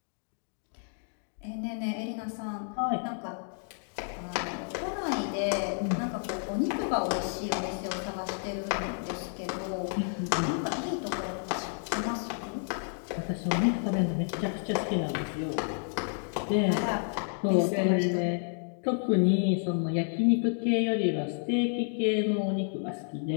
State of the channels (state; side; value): silent; right; 57 dB below the other